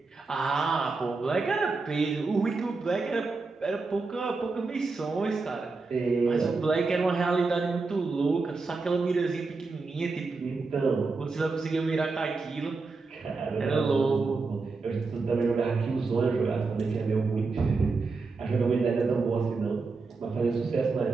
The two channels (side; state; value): left; quieter; 4.1 dB